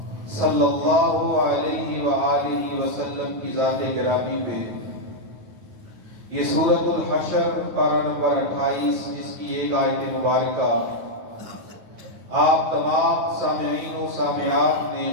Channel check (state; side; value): late; left; 9.2 ms